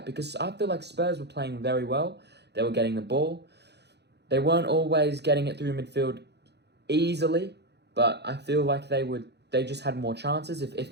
because I feel like Spurs were playing very well. They were getting the ball. They weren't always getting it through midfield easily, but I feel like they just had more chances. If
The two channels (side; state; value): left; late; 0.49 ms